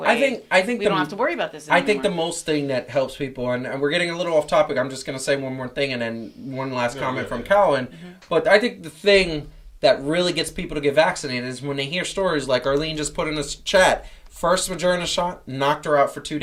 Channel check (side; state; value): both; identical; correlation 1.00